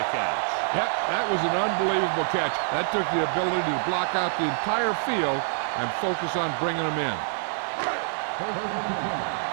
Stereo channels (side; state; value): left; silent; digital silence